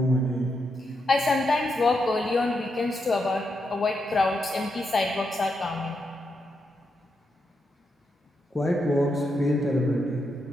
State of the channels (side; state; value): both; normal; correlation 0.83